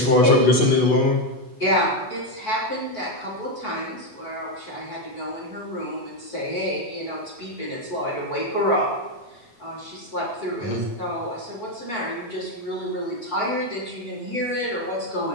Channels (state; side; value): late; right; 8.1 ms